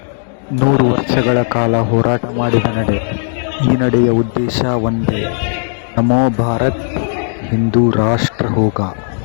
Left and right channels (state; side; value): silent; right; 70 dB below the other